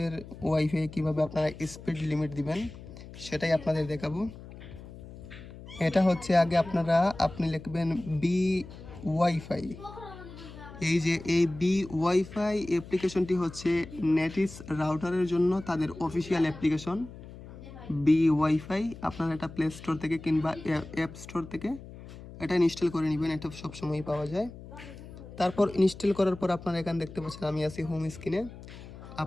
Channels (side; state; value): left; noise; hum, 15 dB below the sound